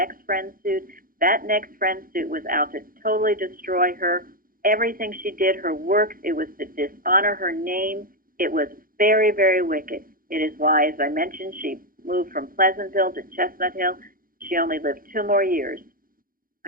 friend suit. That next friend suit was out to totally destroy her. Everything she did, her works, it was to dishonor her name. It was very, very wicked. It is why, as I mentioned, she moved from Pleasantville to Chestnut Hill. She only lived 2 more years,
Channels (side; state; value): left; late; 0.41 ms